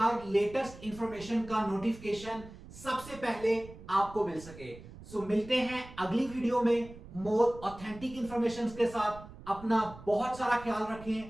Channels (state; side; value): noise; right; rumble, 17 dB below the sound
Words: लेटेस्ट इंफॉर्मेशन का नोटिफिकेशन सबसे पहले आपको मिल सके। सो मिलते हैं अगली वीडियो में मोर ऑथेंटिक इंफॉर्मेशन के साथ। अपना बहुत सारा ख्याल